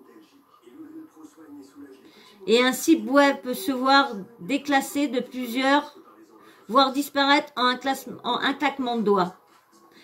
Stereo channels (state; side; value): identical; both; correlation 1.00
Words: Et un site web peut se voir déclassé de plusieurs, voire disparaître en un claquement de doigts.